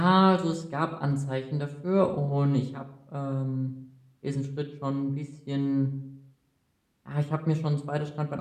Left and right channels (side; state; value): both; identical; correlation 1.00